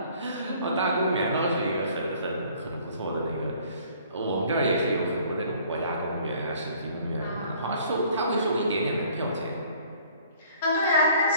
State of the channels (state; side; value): inverted; both; correlation -0.56